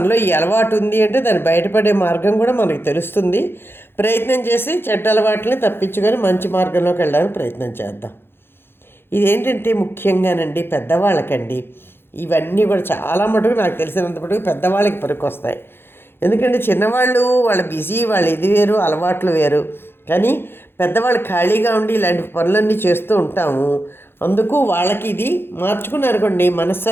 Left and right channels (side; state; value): right; late; 0.11 ms